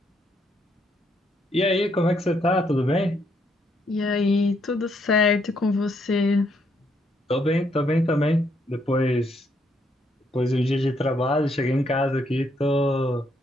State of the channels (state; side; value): normal; both; correlation 0.73